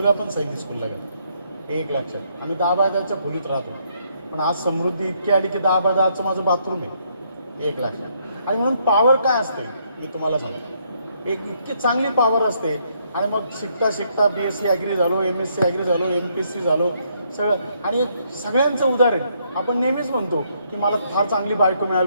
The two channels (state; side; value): inverted; both; correlation -0.72